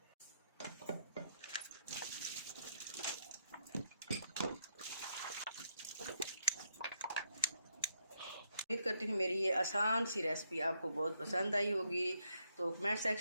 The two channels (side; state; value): both; inverted; correlation -0.77